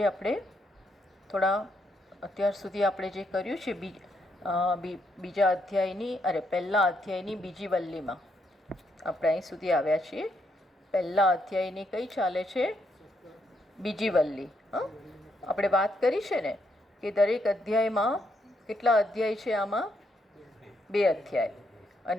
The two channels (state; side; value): normal; both; correlation 0.77